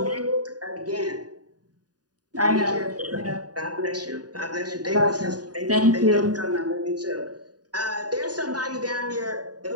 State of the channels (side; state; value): left; late; 0.68 ms